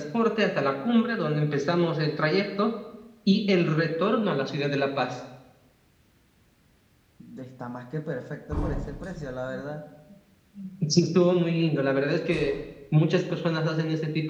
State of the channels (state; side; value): identical; both; correlation 1.00